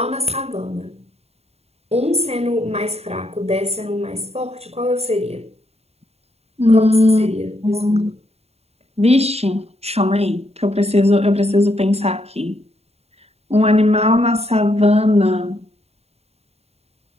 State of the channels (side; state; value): left; late; 0.30 ms